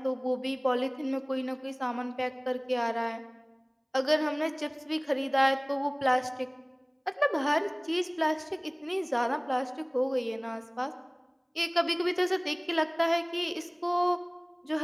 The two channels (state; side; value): identical; both; correlation 1.00